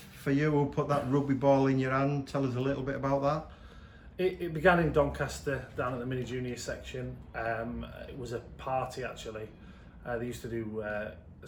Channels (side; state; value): both; identical; correlation 1.00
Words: you? Who put that rugby ball in your hand? Tell us a little bit about that. It began in Doncaster, down at the mini junior section. It was a party actually. They used to do